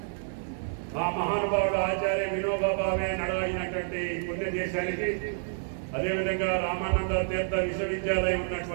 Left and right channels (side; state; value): left; silent; digital silence